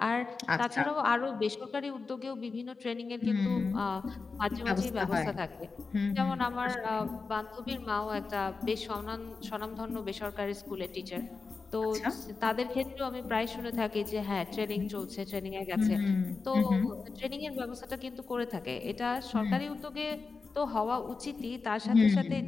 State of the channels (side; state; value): right; quieter; 4.4 dB